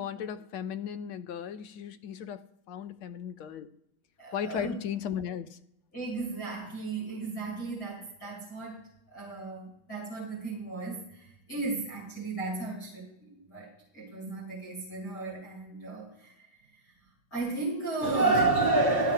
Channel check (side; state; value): right; late; 7.2 ms